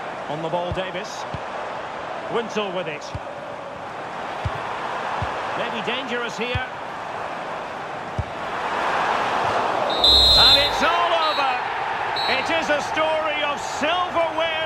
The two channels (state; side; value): identical; both; correlation 1.00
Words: On the ball, Davis. Winsel with it. Maybe dangerous here. And it's all over. It is a story of